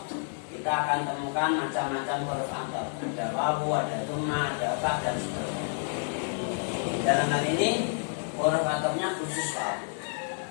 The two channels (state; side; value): silent; right; 58 dB below the other